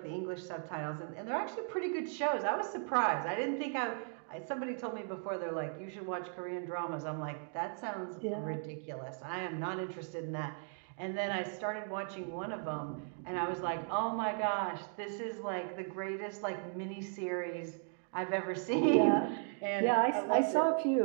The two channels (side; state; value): left; silent; 53 dB below the other